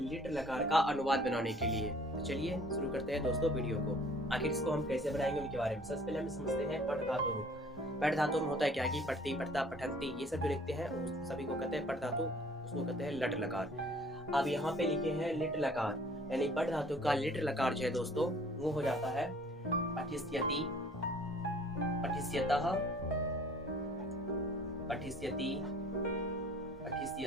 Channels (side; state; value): both; normal; correlation 0.53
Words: लकार का अनुवाद बनाने के लिए। तो चलिए शुरू करते हैं दोस्तों वीडियो को। आखिर इसको हम कैसे बनाएंगे उनके बारे में सबसे पहले हम समझते हैं पट धातु रूप। पट धातु में होता है क्या कि पठती पठता पठंती ये सब जो लिखते हैं उस सभी को कहते हैं पट धातु, उसको कहते हैं लट लकार। अब यहाँ पे लिखे हैं लिट लकार, यानी पट धातु का लिट लकार जो है दोस्तों वो हो जाता है पठिष्यति, पठिष्यतः, पठिष्यति,